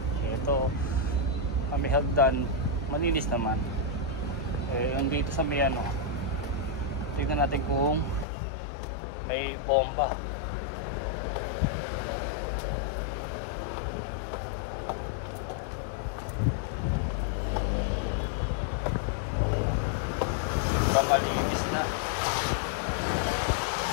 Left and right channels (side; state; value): right; drops out; at 8.2 s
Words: Ito, may hagdan, malinis naman. Yung dito sa may ano, tingnan natin kung may bomba. Malinis na.